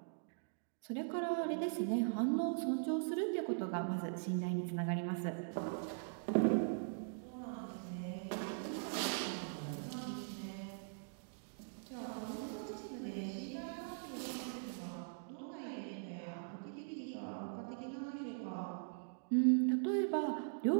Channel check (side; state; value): left; silent; digital silence